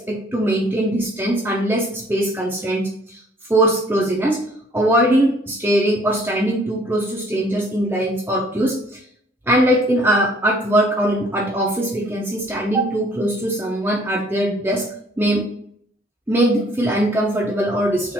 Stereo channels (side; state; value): both; normal; correlation 0.58